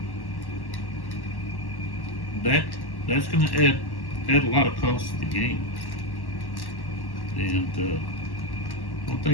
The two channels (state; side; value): late; right; 1.1 ms